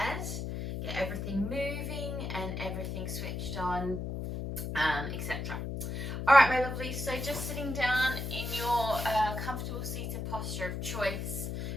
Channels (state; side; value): noise; left; hum, 4 dB below the sound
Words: get everything moving and everything switched on, etc. All right, my lovelies, so just sitting down in your comfortable seated posture of choice